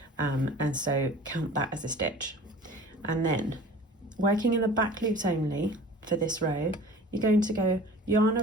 and so count that as a stitch. And then working in the back loops only for this row, you're going to go yarn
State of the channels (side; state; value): both; normal; correlation 0.43